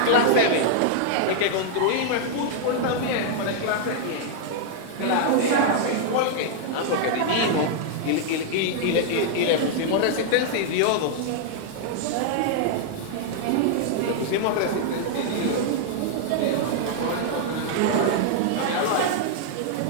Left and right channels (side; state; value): both; different; correlation -0.01